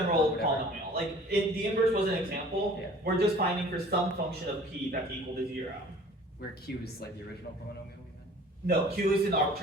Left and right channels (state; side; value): normal; both; correlation 0.48